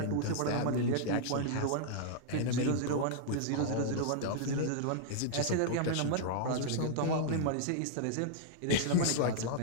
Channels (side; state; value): both; different; correlation -0.01